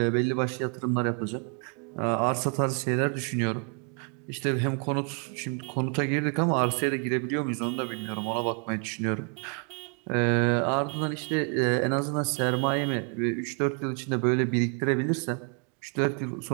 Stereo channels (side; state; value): left; quieter; 38.5 dB